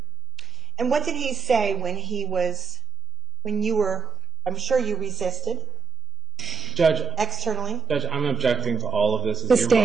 And what did he say when you were, I'm sure you resisted? Judge. Externally? Judge, I'm objecting to all of this.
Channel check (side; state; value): left; quieter; 4.6 dB